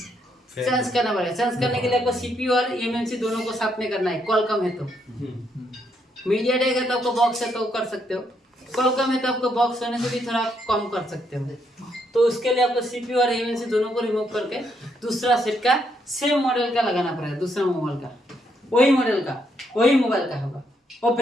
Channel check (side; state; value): both; normal; correlation 0.75